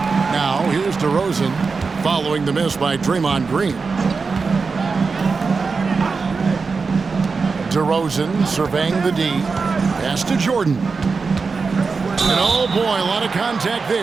Now, here's DeRozan following the miss by Draymond Green. DeRozan surveying the D. Pass to Jordan. And oh boy, a lot of contact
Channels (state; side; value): quieter; left; 4.6 dB